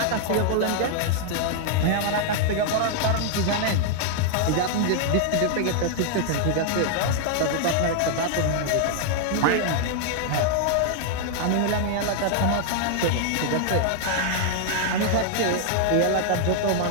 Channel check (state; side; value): different; both; correlation -0.01